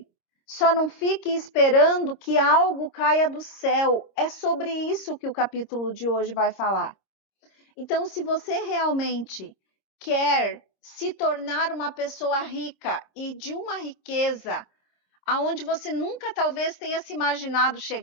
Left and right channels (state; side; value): late; right; 26 ms